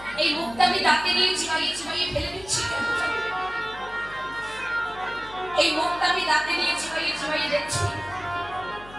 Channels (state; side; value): noise; left; hum, 19 dB below the sound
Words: এই মুখটা আমি দাঁতে নিয়ে চিবাইয়ে চিবাইয়ে ফেলে দিচ্ছি কেন? এই মুখটা আমি দাঁতে নিয়ে চিবাইয়ে চিবাইয়ে দেখছি